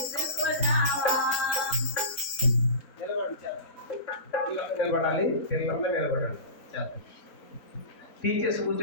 నిలబడాలి, పిల్లలందరూ నిలబడాలి. చేద్దాం. టీచర్స్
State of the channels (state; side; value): late; right; 3.6 ms